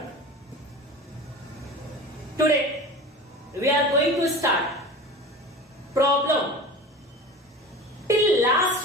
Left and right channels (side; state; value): both; normal; correlation 0.35